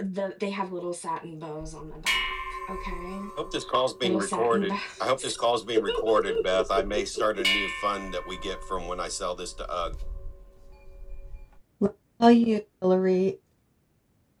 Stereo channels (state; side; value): identical; both; correlation 1.00